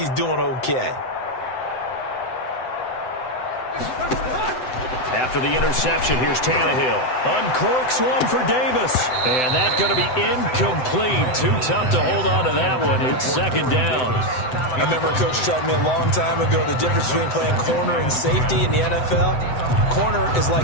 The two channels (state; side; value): late; right; 7.8 ms